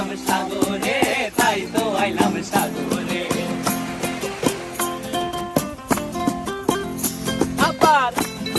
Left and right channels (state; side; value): identical; both; correlation 1.00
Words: সাগরে, তাই তো আইলাম সাগরে। আবার